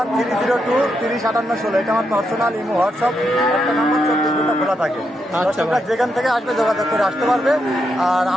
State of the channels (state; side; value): normal; both; correlation 0.82